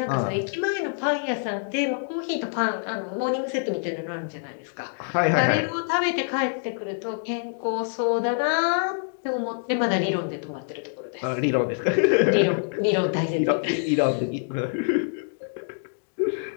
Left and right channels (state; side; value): silent; right; digital silence